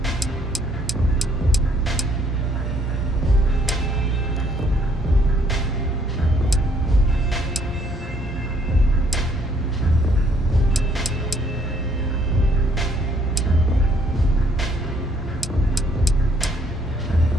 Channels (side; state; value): both; normal; correlation 0.66